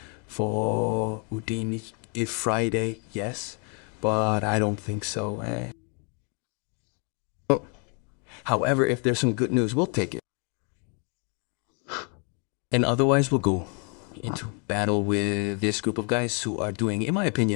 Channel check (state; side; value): quieter; right; 38.2 dB